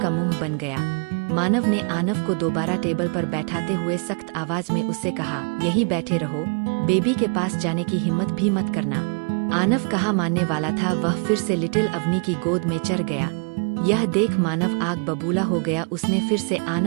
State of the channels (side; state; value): left; quieter; 38.5 dB